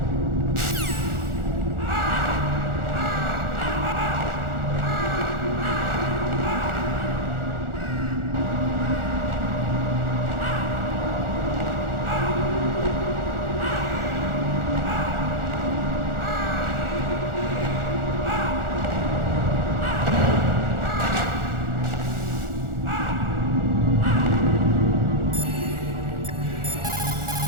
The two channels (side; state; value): left; late; 1.4 ms